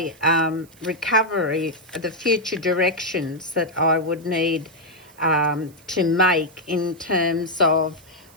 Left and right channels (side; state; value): right; noise; hiss, 27 dB below the sound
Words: recovery, the future directions that I would need to make in terms of